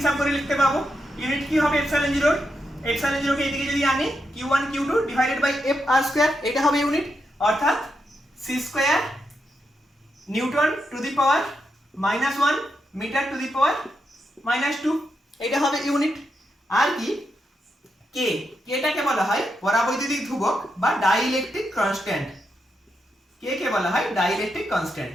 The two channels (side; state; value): both; normal; correlation 0.84